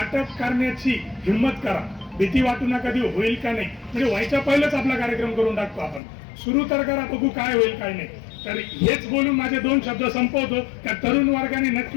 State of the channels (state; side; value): drops out; right; at 6.0 s